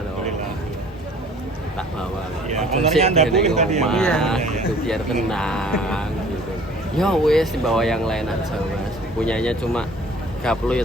Alhamdulillah. Tak bawa. Ya, Ojo ownernya sih Anda di booking tadi ya? rumah, Iya. gitu biar tenang gitu. Ya wes dibawa yang lain aja Mas. Punyanya cuma gaplo ya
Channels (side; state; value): both; normal; correlation 0.52